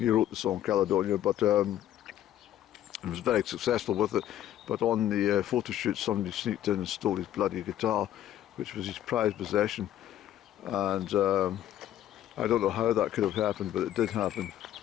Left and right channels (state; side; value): quieter; right; 12.0 dB